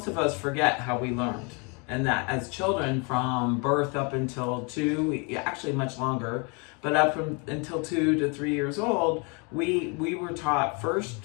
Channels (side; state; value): right; quieter; 32.7 dB